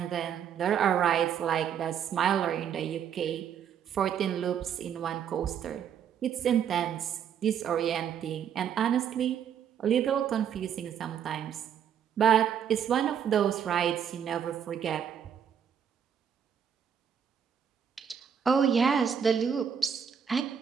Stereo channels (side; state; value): left; quieter; 8.3 dB